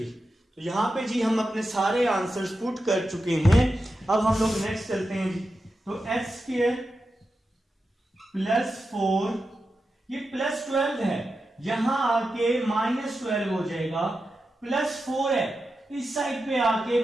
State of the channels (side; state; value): both; normal; correlation 0.90